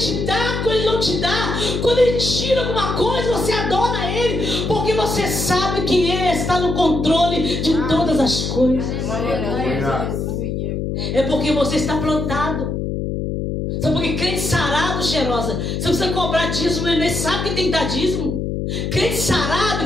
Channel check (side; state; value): left; noise; hum, 2 dB below the sound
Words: dá, quando Ele não te dá. Quando Ele tira alguma coisa, você adora Ele. Porque você sabe que Ele está no controle de todas as coisas. É porque você está plantado. Sabe por que crente sarado, cheirosa? Você precisa cobrar dízimo, ele nem sabe que tem que dar dízimo. Crente